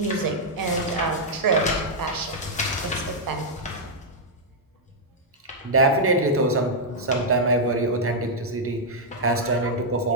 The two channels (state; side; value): normal; both; correlation -0.06